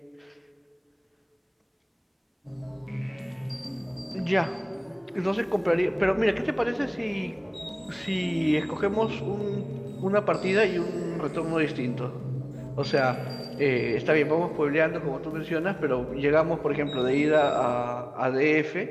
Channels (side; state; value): both; identical; correlation 1.00